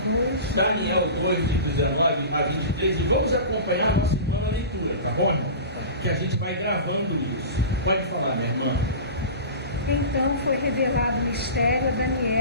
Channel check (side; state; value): both; inverted; correlation -0.32